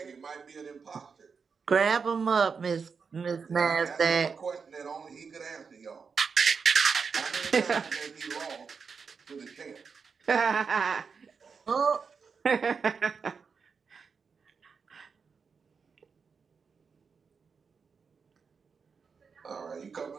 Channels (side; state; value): left; quieter; 5.6 dB